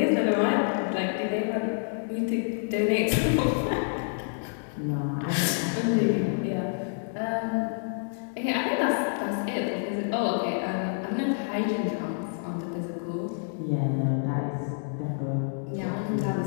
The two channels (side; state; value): right; silent; digital silence